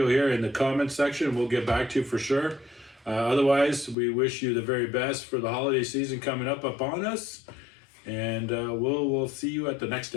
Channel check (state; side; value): drops out; right; at 4.0 s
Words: here in the comments section. We'll get back to you for sure. Otherwise, we wish you the very best for the holiday season coming up upon us. And we'll see you at the next